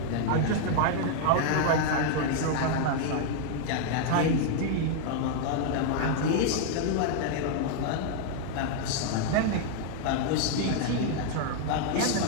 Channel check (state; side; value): different; both; correlation -0.01